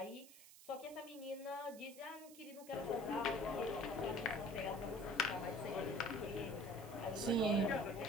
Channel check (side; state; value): right; noise; hiss, 18 dB below the sound